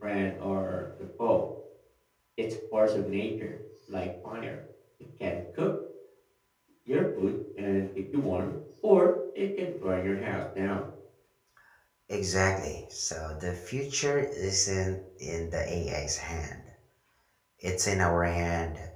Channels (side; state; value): both; identical; correlation 1.00